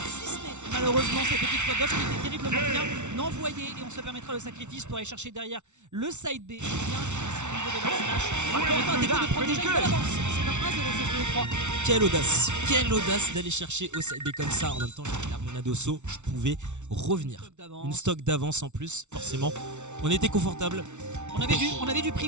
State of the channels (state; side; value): late; left; 0.83 ms